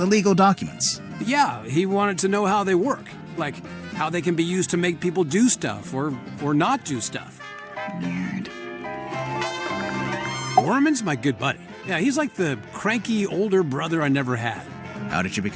legal documents? Yeah, he wanted to know how they work. Like, how they can be used to make people do stuff or not do stuff. Weird. Orman's my good buddy. Yeah, he's like the cranky older brother I never had. How did you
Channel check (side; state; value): both; identical; correlation 1.00